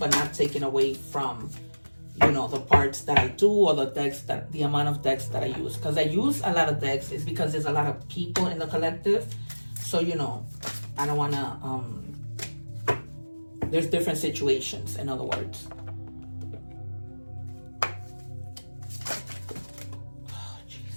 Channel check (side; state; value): both; inverted; correlation -1.00